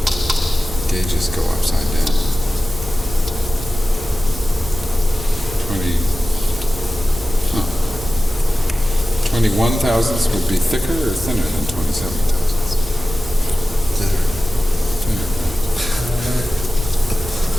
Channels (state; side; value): normal; both; correlation 0.94